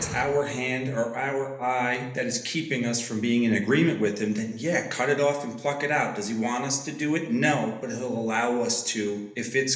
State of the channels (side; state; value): both; identical; correlation 1.00